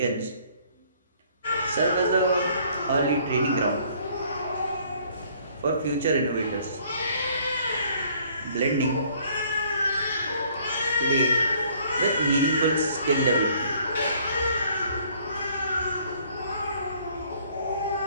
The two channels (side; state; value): both; inverted; correlation -0.60